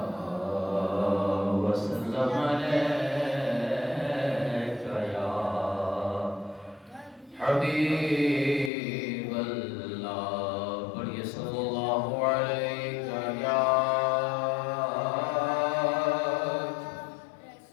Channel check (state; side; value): drops out; right; at 8.7 s